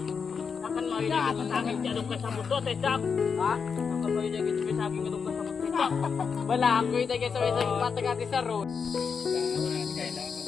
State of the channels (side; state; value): right; quieter; 5.9 dB